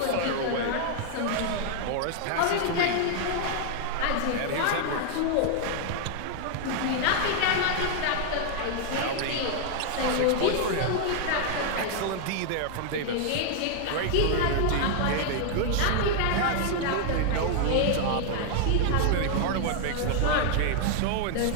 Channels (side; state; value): both; different; correlation 0.00